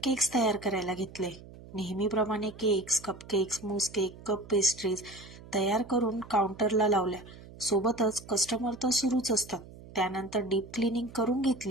तयार करायला घेतले. नेहमीप्रमाणे केक्स, कपकेक्स, मूस केक, कप पेस्ट्रीज तयार करून काउंटरला लावल्या. सोबतच कस्टमर तर सुरूच असतात. त्यानंतर डीप क्लिनिंग करून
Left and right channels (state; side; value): noise; right; hum, 18 dB below the sound